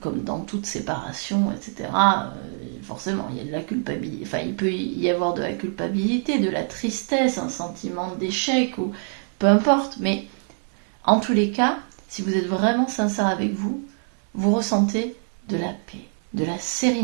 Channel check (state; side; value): silent; left; 55 dB below the other